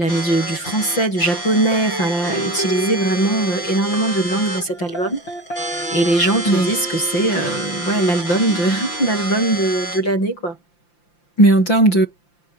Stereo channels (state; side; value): late; right; 5.8 ms